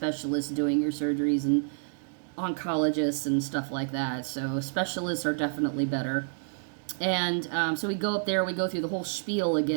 doing your surgeries and oncologists and stuff like that. So specialists are definitely better. And so we go up there, we go through the whole spiel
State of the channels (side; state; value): left; silent; digital silence